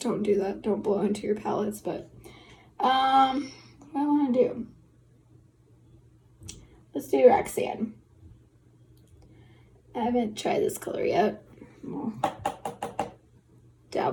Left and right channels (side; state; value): both; identical; correlation 1.00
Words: do that. Don't blow into your palettes, but what do I want to do? Let's do Roxanne. I haven't tried this color yet. We'll